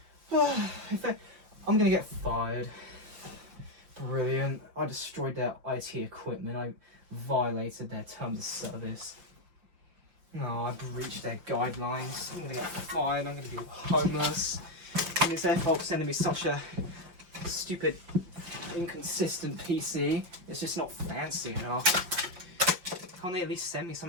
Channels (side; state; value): left; late; 5.7 ms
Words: I'm going to get fired. Brilliant. I destroyed their IT equipment. I violated their terms of service. No, I breached their guidelines. I'm going to get fired. I'm going to be homeless. And it's their fault for sending me such a stupid, inconsistent PC. It's just not fancy enough. Can't they at least send me